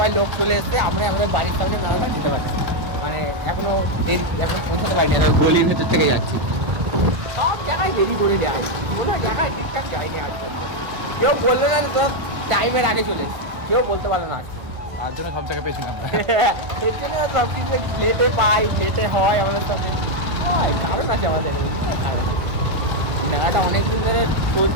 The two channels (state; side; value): late; left; 1.7 ms